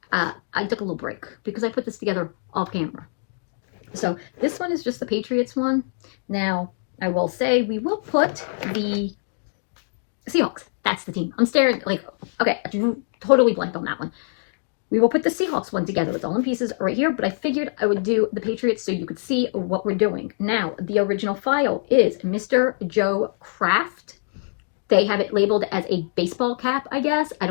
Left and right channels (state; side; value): silent; right; digital silence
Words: I took a little break because I put this together off camera. So this one is just the Patriots one. Now, I will say we will put the Seahawks. That's the team. I'm staring like, okay, I totally blanked on that one. We will put the Seahawks one together. It's all in pieces right here, but I figured I would do the Patriots so you could see what we're doing. Now, the original file is Mr. Joe Craft. They have it labeled as a baseball cap, I guess. I